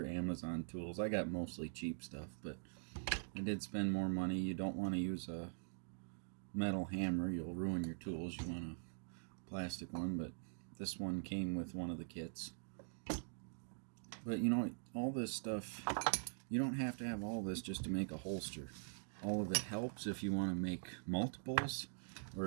Amazon tools. I got mostly cheap stuff, but I did spend more money. You don't want to use a metal hammer. You'll ruin your tools. You want a plastic one, but this one came with one of the kits. But you know, all this stuff, you don't have to have all this just to make a holster. All of it helps if you want to make multiples, or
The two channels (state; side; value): silent; left; digital silence